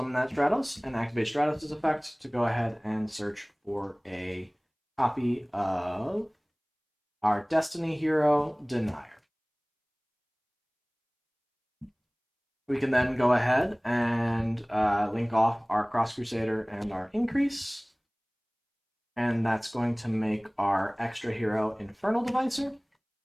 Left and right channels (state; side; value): identical; both; correlation 1.00